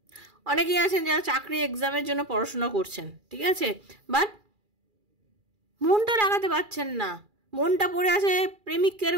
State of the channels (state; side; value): late; left; 2.4 ms